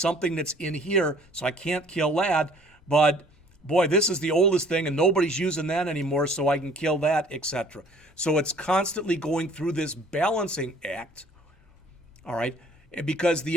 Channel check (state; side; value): normal; both; correlation 0.55